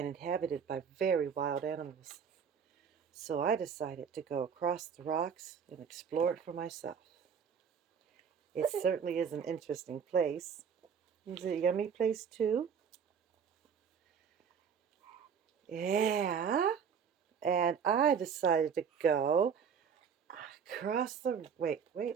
inhabited by very wild animals. So I decided to go across the rocks and explore it for myself. It certainly is an interesting place. Is it a yummy place too? Yeah. And I decided to go across the... Wait,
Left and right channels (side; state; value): left; quieter; 7.0 dB